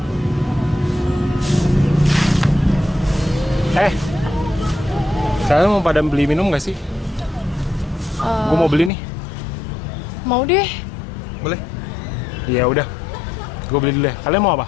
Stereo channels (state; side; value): drops out; right; at 8.9 s